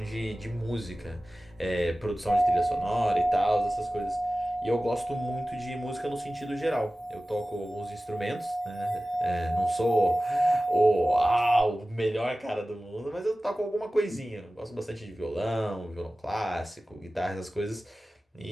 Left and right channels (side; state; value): both; normal; correlation 0.96